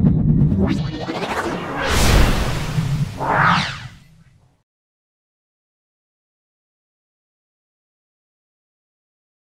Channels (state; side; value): identical; both; correlation 1.00